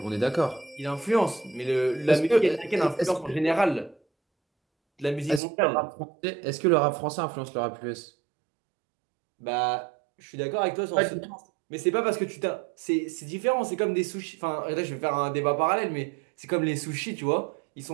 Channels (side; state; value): left; drops out; at 5.4 s